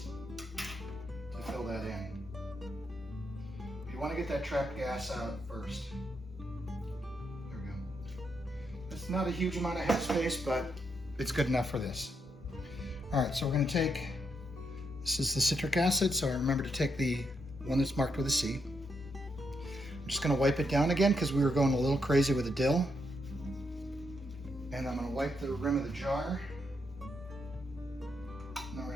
fill that in. You want to get that trapped gas out first. There we go. It's not a huge amount of headspace, but it's good enough for this. All right, so we're going to take, this is the citric acid, so I remember to take the one that's marked with a C. I'm just going to wipe it down again because we were going a little crazy with the dill. And I'm going to wipe the rim of the jar. And then we're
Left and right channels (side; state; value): both; normal; correlation 0.80